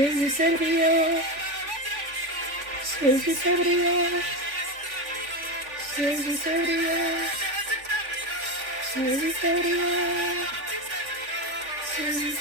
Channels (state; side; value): late; left; 3.5 ms